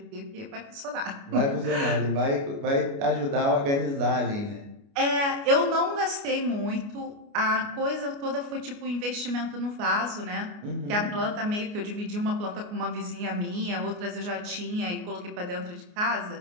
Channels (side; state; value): left; late; 29 ms